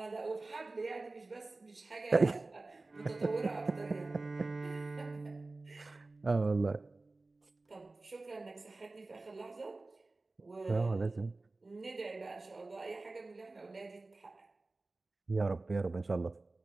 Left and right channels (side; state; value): left; quieter; 3.3 dB